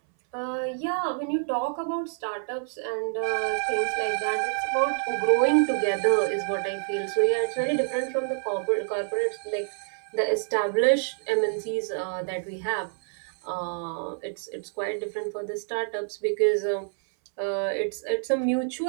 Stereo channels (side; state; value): left; silent; 60 dB below the other